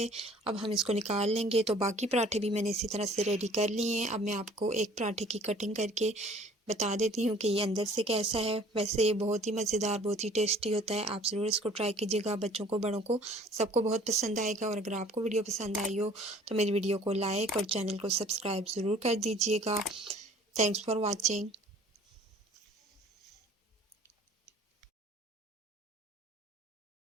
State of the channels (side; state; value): both; normal; correlation 0.52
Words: अब हम इसको निकाल लेंगे। तो बाकी पराठे भी मैंने इसी तरह से रेडी कर लिए हैं। अब मैं आपको एक पराठे की कटिंग करके बता देती हूँ कि ये अंदर से कैसा है। वैसे ये बहुत ही मज़ेदार, बहुत ही टेस्टी होता है। आप ज़रूर इसको ट्राई कीजिएगा, बच्चों को बड़ों को सबको बहुत पसंद आएगा। और अगर आपको वीडियो पसंद आई हो तो मेरी वीडियो को लाइक और चैनल को सब्सक्राइब ज़रूर कर दीजिएगा। Thanks for watching.